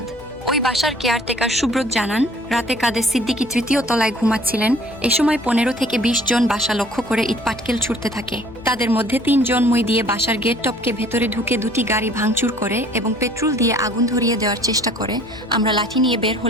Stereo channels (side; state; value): left; noise; hum, 21 dB below the sound